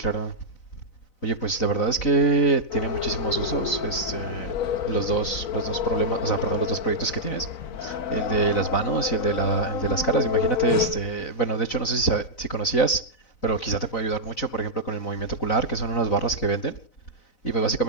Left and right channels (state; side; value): late; right; 4.0 ms